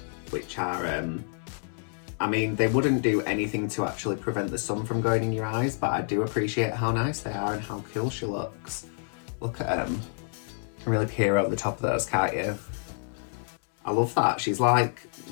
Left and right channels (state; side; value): silent; right; 59 dB below the other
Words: which are, I mean, they wouldn't do anything to actually prevent the sun from going in your eyes, but I do appreciate how nice they are and how cool she looks. Look at them. You can really peer over the top of those, can't you? I love that. She's like,